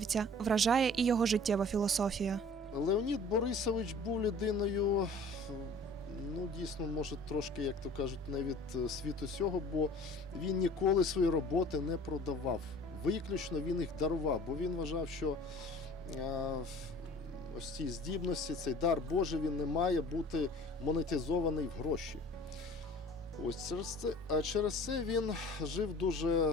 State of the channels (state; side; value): normal; both; correlation 0.47